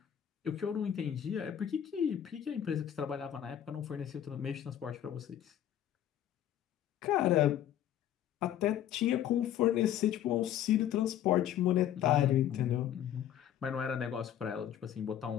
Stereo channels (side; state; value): right; quieter; 10.7 dB